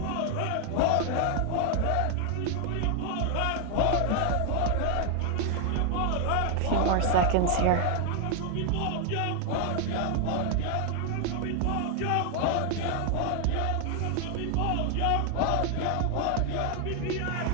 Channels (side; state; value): both; different; correlation 0.00